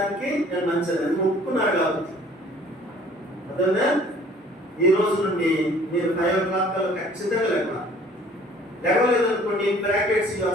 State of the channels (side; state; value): both; normal; correlation 0.53